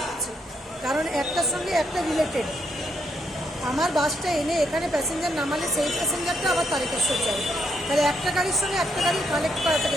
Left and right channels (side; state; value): both; normal; correlation 0.76